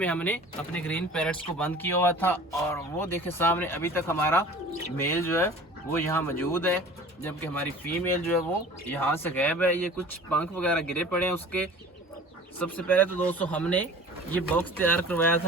हमने अपने ग्रीन पैरेट्स को बंद किया हुआ था और वो देखे सामने अभी तक हमारा मेल जो है वो यहाँ मौजूद है, जबकि हमारी फीमेल जो है वो यहाँ से गायब है। ये कुछ पंख वगैरह गिरे पड़े हैं उसके। सबसे पहले तो दोस्तों हमने ये बॉक्स तैयार करवाया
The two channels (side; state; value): both; normal; correlation 0.43